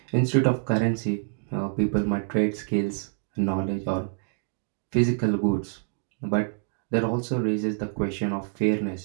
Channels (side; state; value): left; silent; digital silence